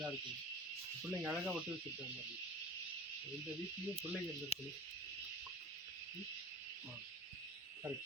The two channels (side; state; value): both; normal; correlation 0.38